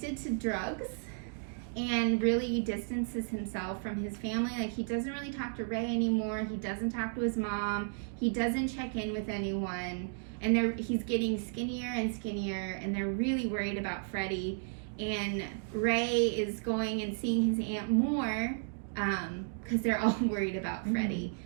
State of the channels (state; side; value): silent; left; digital silence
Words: to drugs and really distances himself from his family. He doesn't really talk to Ray anymore. He doesn't talk to his mom. He doesn't check in with anyone. And he's getting skinnier and skinnier, and they're really worried about Freddie. And Ray is going and seeing his aunt more, because they're all worried about Freddie